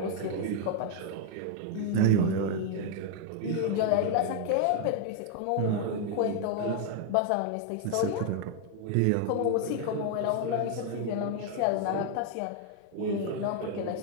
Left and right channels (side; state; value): both; different; correlation 0.00